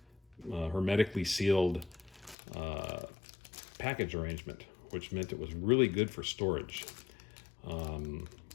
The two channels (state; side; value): drops out; right; at 2.4 s